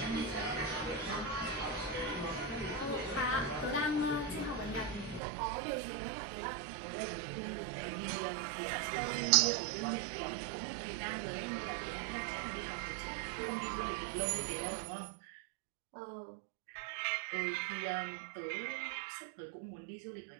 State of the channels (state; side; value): drops out; left; at 5.2 s